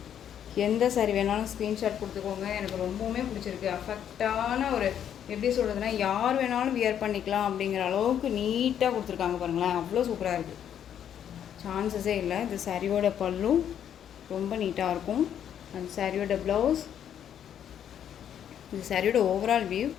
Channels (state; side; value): quieter; right; 9.4 dB